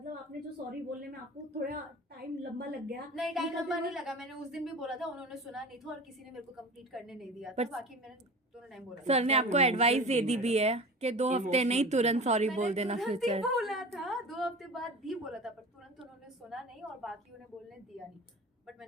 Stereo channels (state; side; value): normal; both; correlation 0.36